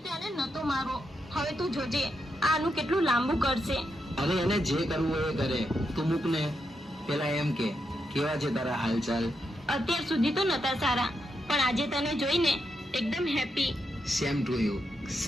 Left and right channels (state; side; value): normal; both; correlation 0.83